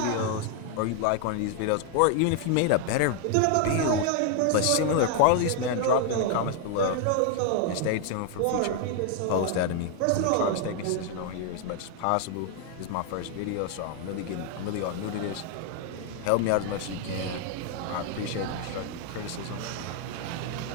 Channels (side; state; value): both; different; correlation 0.00